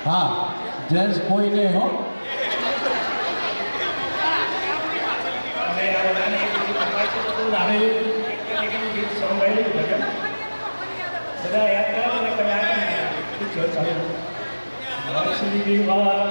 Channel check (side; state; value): both; inverted; correlation -1.00